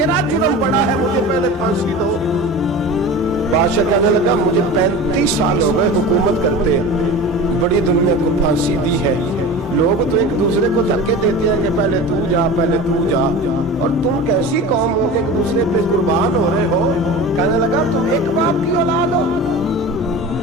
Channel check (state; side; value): normal; both; correlation 0.33